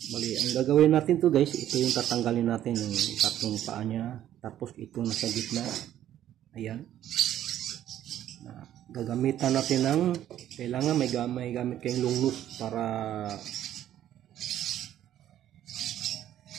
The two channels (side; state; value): left; quieter; 11.8 dB